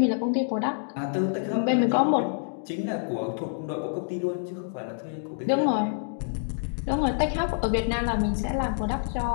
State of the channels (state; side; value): silent; right; digital silence